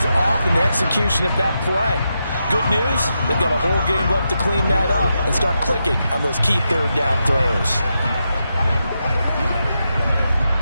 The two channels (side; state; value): both; inverted; correlation -0.86